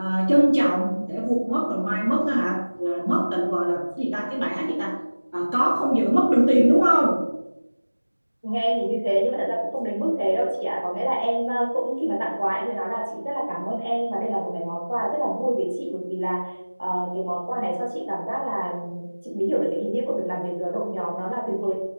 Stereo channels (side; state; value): both; inverted; correlation -1.00